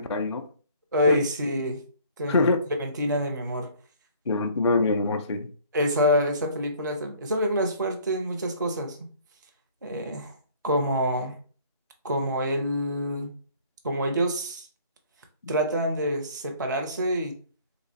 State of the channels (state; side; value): inverted; both; correlation -0.54